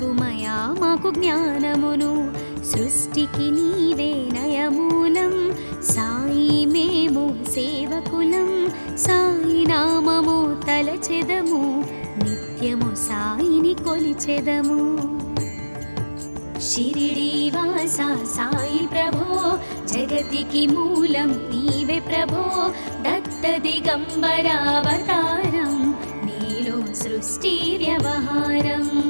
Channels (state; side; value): inverted; both; correlation -1.00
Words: మాకు జ్ఞానమును సృష్టికి నీవే నయమూలం. సాయి మేము సేవకులం సాయి నామము తలచెదము నిత్యము సాయిని కొలిచెదము. షిరిడి వాస సాయి ప్రభో జగతికి మూలం నీవే ప్రభో దత్త దిగంబరావతారం నీలో సృష్టి వ్యవహారం.